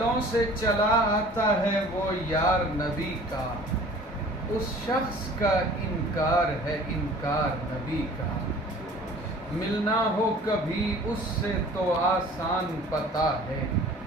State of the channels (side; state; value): both; normal; correlation 0.48